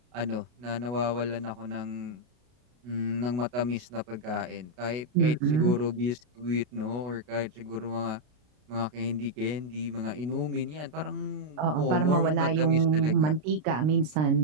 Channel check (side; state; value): left; late; 33 ms